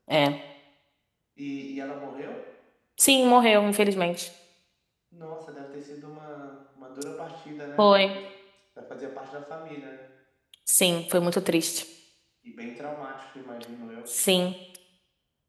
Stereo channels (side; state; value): both; identical; correlation 1.00